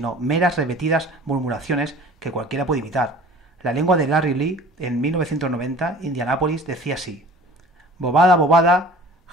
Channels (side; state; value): both; normal; correlation 0.46